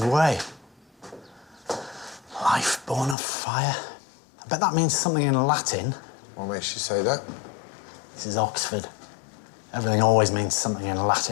way. Life born of fire. I bet that means something in Latin. What makes you say that? This is Oxford. Everything always means something in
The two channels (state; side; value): drops out; right; at 3.2 s